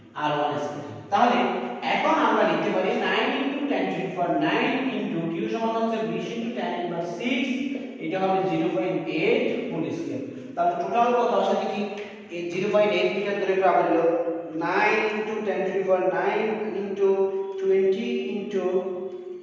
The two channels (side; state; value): both; identical; correlation 1.00